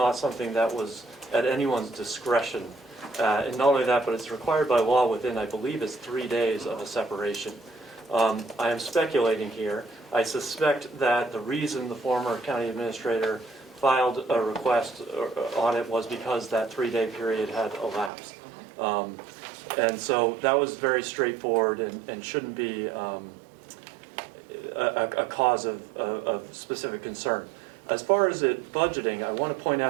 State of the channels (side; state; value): left; drops out; at 18.1 s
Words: something that was at anyone's discretion. And not only that, but it's required by law within, I believe, it's 3 days of a separation. I am speculating here. I suspect that the reason the former county administrator filed a request on it was because that 3-day period had elapsed. And so that was very straightforward and shouldn't be a cause of specific concern. As far as it budgeting, I want to point